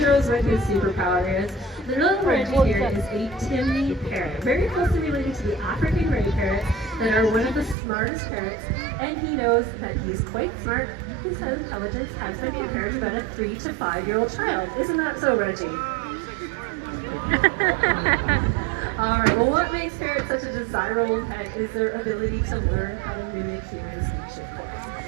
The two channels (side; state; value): left; drops out; at 7.8 s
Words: what his superpower is. The little Reggie here is a Timney parrot, very closely related to the African gray parrots that are one of the smartest parrots, and he knows that he's quite smart. His intelligence has been compared to about a 3 to 5-year-old child. Isn't that so, Reggie? Alright, well what makes parrots such a desirable pet is their ability to learn how to mimic human speech, of